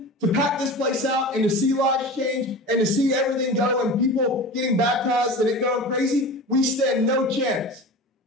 to pack this place out and to see lives change and to see everything go and people getting baptized and it going crazy, we stand no chance.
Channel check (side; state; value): both; normal; correlation 0.33